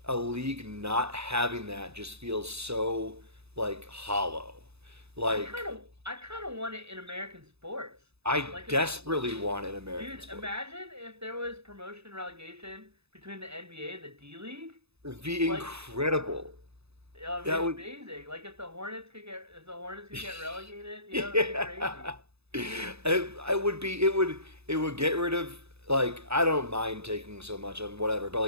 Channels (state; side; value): late; left; 0.79 ms